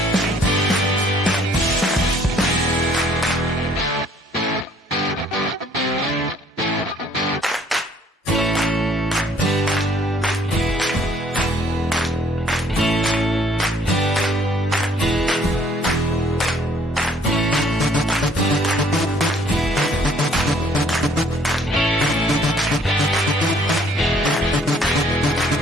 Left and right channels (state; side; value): normal; both; correlation 0.61